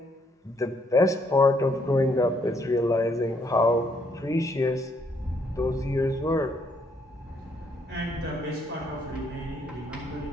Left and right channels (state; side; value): normal; both; correlation 0.70